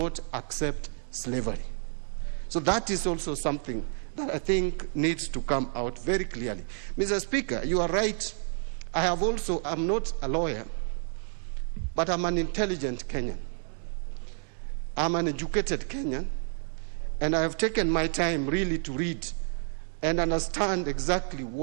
accept slavery. So that is also something that I think needs to come out very clearly. Mr. Speaker, you are right. I'm not a lawyer, but I'm an intelligent Kenyan. I'm an educated Kenyan, and I have taken my time really to read and understand exactly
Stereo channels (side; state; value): left; silent; 58 dB below the other